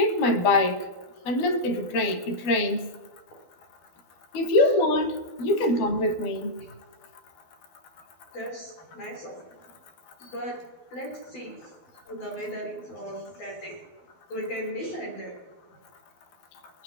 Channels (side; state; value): right; late; 12 ms